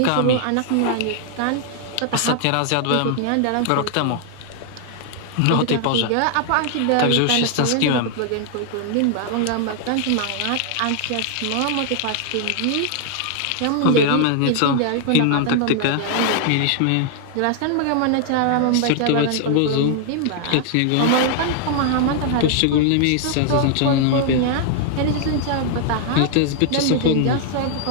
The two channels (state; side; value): different; both; correlation 0.00